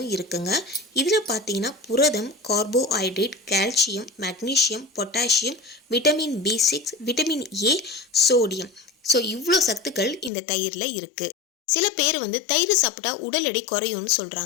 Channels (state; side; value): drops out; right; at 10.3 s